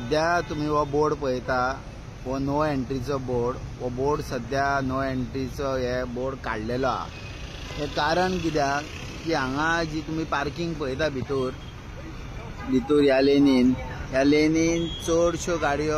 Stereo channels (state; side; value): identical; both; correlation 1.00